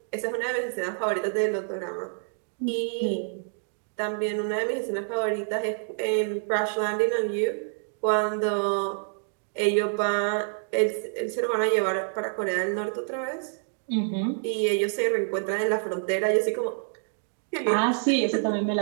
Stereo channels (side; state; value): left; silent; digital silence